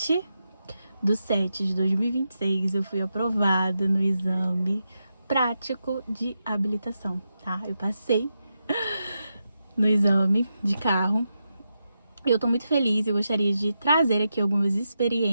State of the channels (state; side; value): inverted; both; correlation -0.87